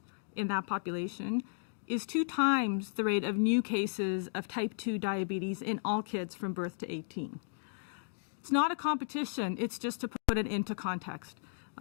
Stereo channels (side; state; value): right; silent; digital silence